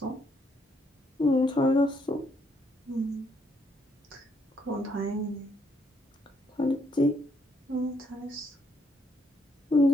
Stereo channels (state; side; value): normal; both; correlation 0.73